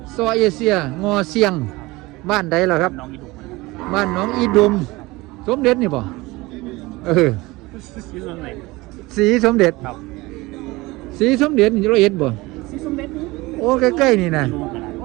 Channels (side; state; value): left; quieter; 21.4 dB